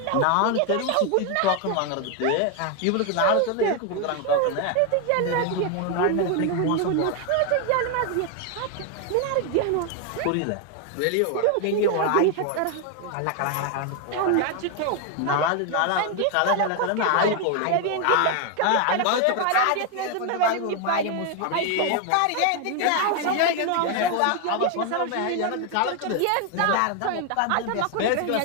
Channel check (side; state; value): both; different; correlation 0.01